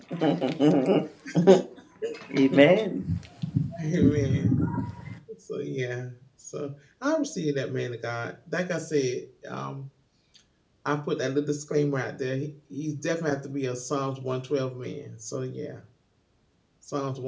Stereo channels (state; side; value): identical; both; correlation 1.00